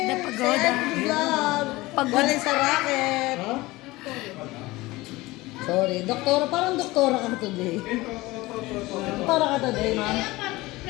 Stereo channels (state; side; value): quieter; right; 20.1 dB